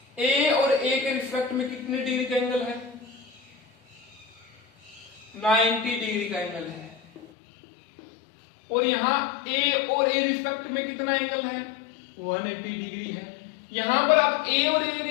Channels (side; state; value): right; drops out; at 7.2 s